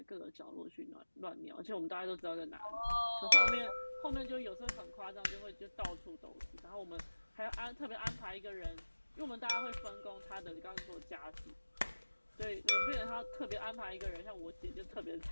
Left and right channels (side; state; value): both; inverted; correlation -1.00